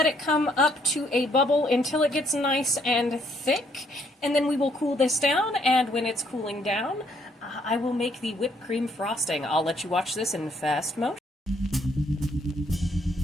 it come up to a bubble until it gets nice and thick. And then we will cool this down, and when it's cooling down, I will make the whipped cream frosting. I'll let you watch this in fast motion.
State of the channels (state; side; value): normal; both; correlation 0.69